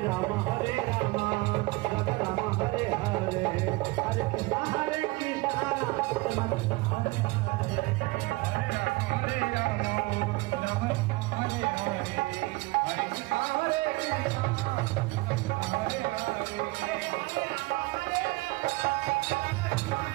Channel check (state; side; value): quieter; left; 22.9 dB